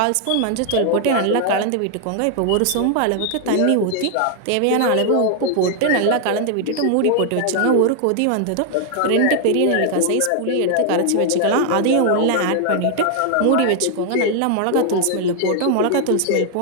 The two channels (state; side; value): different; both; correlation 0.00